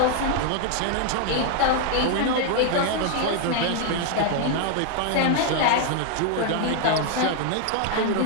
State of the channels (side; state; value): both; different; correlation 0.00